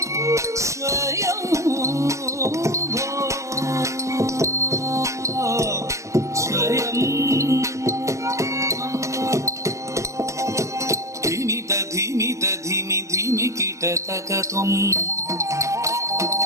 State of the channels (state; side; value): late; left; 0.15 ms